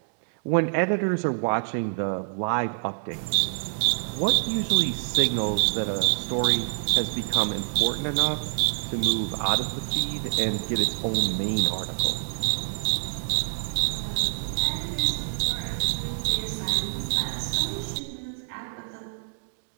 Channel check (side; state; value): left; silent; digital silence